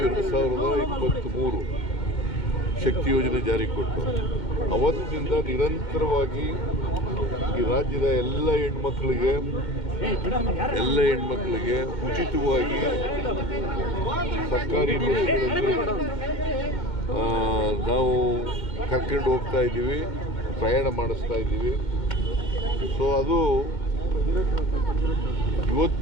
2023 ಶಕ್ತಿ ಯೋಜನೆ ಜಾರಿಗೆ ಕೊಟ್ಟು ಅವತ್ತಿನಿಂದ ನಿರಂತರವಾಗಿ ಈ ರಾಜ್ಯದ ಎಲ್ಲ ಹೆಣ್ಮಕ್ಳಿಗೆ ಉಚಿತವಾಗಿ ಸರ್ಕಾರಿ ಬಸ್ಗಳಲ್ಲಿ ನಾವು ಕರ್ಕೊಂಡು ಹೋಗ್ತಾ ಇದ್ದೀವಿ, ಪ್ರಯಾಣ ಮಾಡಿಸ್ತಾ ಇದ್ದೀವಿ. ಸೊ ಅದು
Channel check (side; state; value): right; late; 2.1 ms